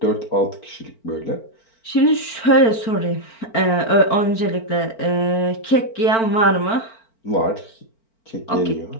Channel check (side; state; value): right; late; 4.4 ms